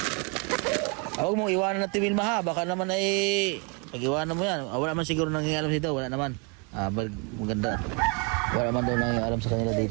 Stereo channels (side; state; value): left; quieter; 33.7 dB